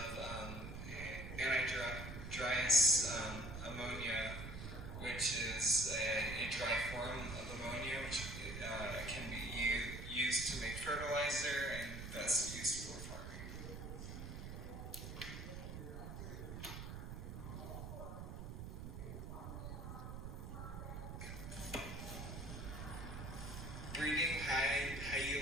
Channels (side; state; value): right; noise; rumble, 7 dB below the sound